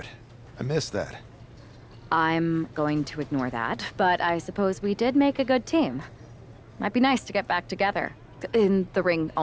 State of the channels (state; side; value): identical; both; correlation 1.00